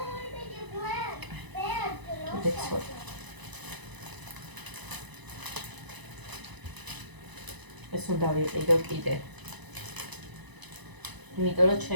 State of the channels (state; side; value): late; left; 1.0 ms